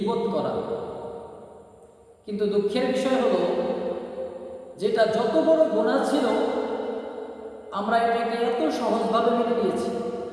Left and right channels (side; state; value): both; identical; correlation 1.00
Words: করা। কিন্তু দুঃখের বিষয় হলো, যেটা যত বড় গুনাহ ছিল আমরা এটাকে এত সহজভাবে মেনে নিয়েছি।